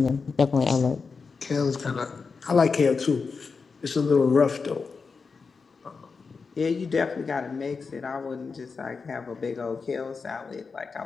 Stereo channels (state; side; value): quieter; right; 4.9 dB